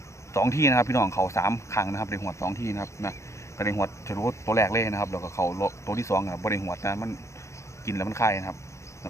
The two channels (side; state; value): right; late; 0.14 ms